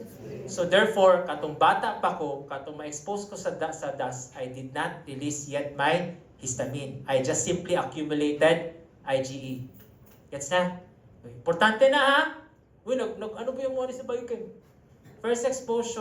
So therefore, katong bata pa ko, katong ma-expose ko sa dust, I did not release yet my histamine. I just simply accumulated IgE. Gets na? Importante na ha? Uy, ano ba yung mga sa biochem? First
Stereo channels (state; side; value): identical; both; correlation 1.00